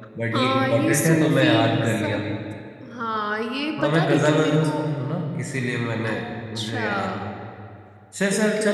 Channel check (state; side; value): identical; both; correlation 1.00